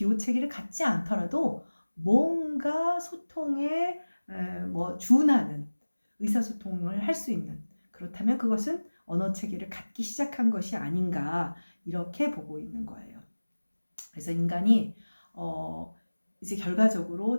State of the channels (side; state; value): both; inverted; correlation -1.00